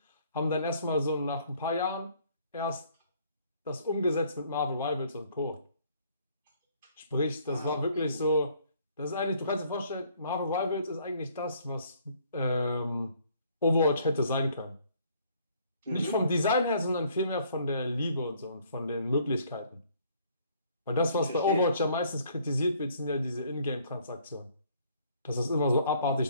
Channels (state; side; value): inverted; both; correlation -0.62